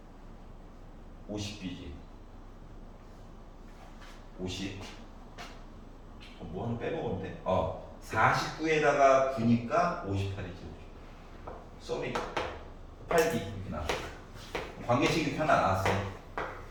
50b지. 50. 뭐 하나 빼먹으면 돼? 49에다가 9니까 58이지. 쏘리 8b 이렇게 나와. 관계식이 하나 나왔어.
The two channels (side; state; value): both; identical; correlation 1.00